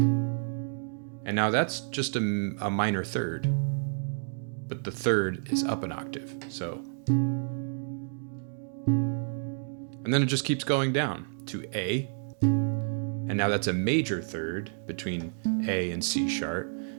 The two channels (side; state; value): left; silent; digital silence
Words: now that's just a minor third, but the third is up an octave, so. And then it just keeps going down to A, and now that's a major third between A and C sharp,